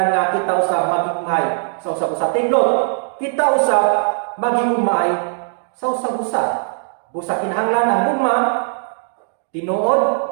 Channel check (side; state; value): left; silent; digital silence